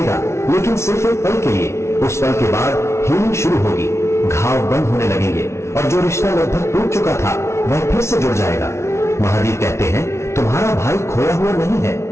लेकिन सिर्फ एक पल के लिए। उस पल के बाद हीलिंग शुरू होगी, घाव बंद होने लगेंगे और जो रिश्ता लगभग टूट चुका था वह फिर से जुड़ जाएगा। महादेव कहते हैं, तुम्हारा भाई खोया हुआ नहीं है,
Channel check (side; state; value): right; late; 0.13 ms